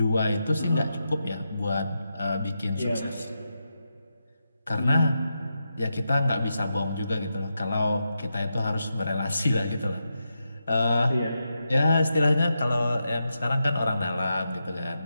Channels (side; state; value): both; inverted; correlation -0.86